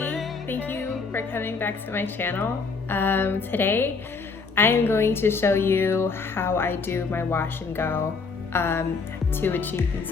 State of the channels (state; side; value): quieter; right; 4.7 dB